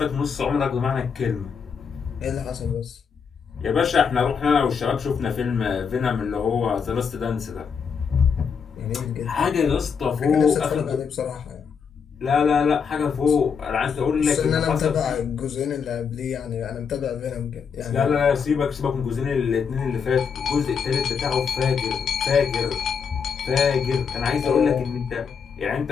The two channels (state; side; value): quieter; right; 6.4 dB